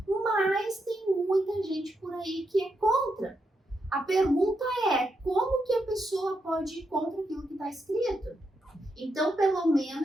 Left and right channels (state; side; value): normal; both; correlation 0.83